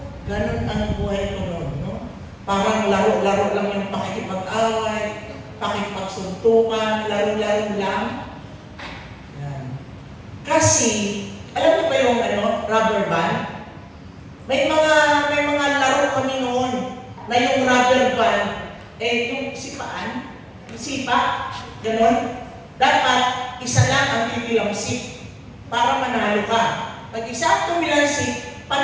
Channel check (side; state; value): both; identical; correlation 1.00